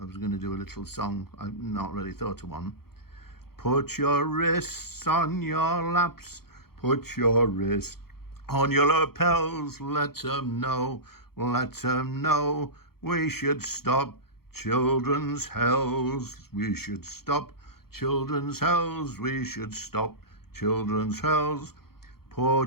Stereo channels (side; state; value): right; late; 0.94 ms